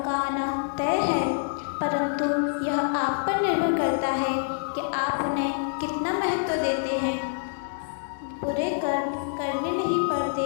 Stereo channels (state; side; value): silent; right; digital silence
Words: आना तय है, परंतु यह आप पर निर्भर करता है कि आप उन्हें कितना महत्व देते हैं। बुरे कर्म करने नहीं पड़ते,